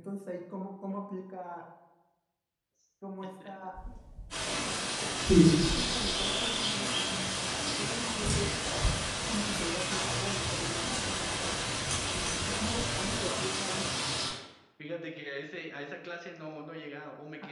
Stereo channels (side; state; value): both; identical; correlation 1.00